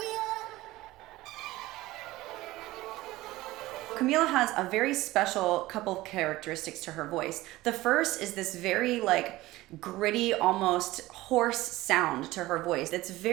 Camila has a very special couple of characteristics to her voice. The first is this very gritty, almost hoarse sound to her voice. It's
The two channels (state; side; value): quieter; left; 18.1 dB